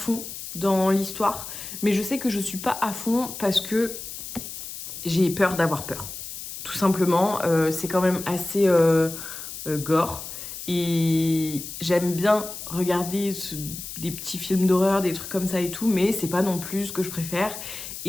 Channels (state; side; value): noise; left; hiss, 9 dB below the sound